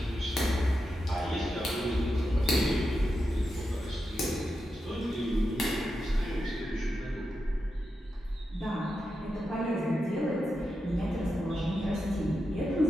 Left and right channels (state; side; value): normal; both; correlation 0.88